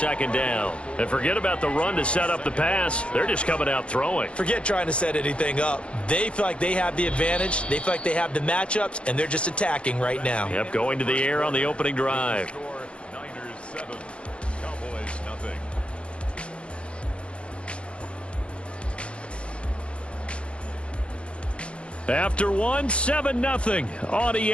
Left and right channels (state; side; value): late; right; 0.060 ms